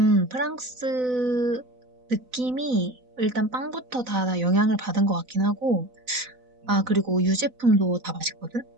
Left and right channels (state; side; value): late; left; 4.0 ms